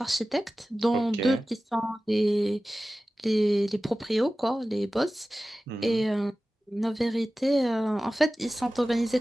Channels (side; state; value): both; normal; correlation 0.96